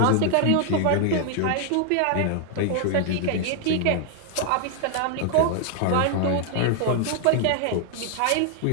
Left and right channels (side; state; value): both; different; correlation 0.00